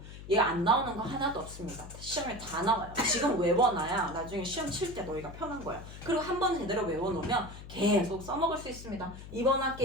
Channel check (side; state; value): left; noise; hum, 13 dB below the sound